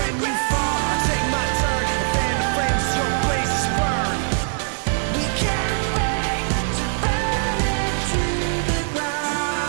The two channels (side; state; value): left; silent; digital silence